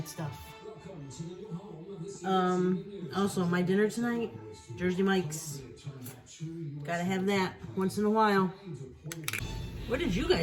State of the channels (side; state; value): both; identical; correlation 1.00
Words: stuff. Also, my dinner tonight, Jersey Mike's. Gotta have that once in a while. What did you